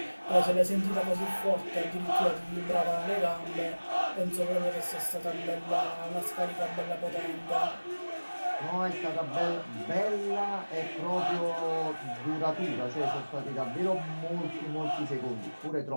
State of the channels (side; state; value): both; inverted; correlation -1.00